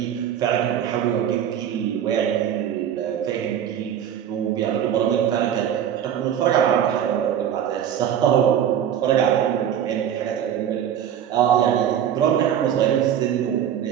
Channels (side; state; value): left; quieter; 9.6 dB